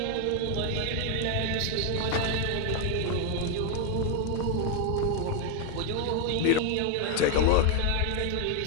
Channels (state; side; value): different; both; correlation 0.00